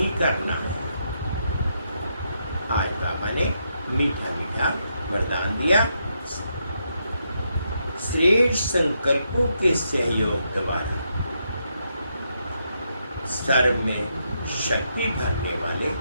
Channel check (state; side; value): inverted; both; correlation -0.80